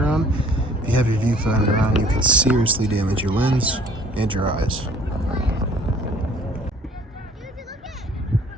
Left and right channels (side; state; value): both; normal; correlation 0.55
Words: on. If you have your viewfinder on, you can seriously damage your lens and your eyes.